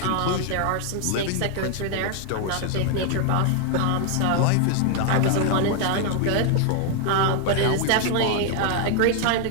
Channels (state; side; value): different; both; correlation 0.00